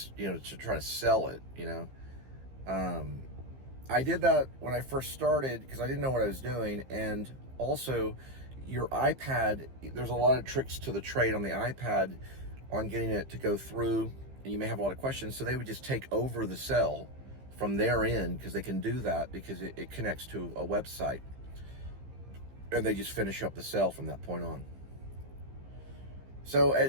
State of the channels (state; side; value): late; left; 15 ms